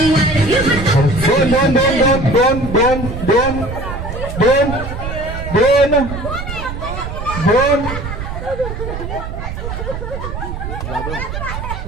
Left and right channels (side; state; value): right; noise; rumble, 7 dB below the sound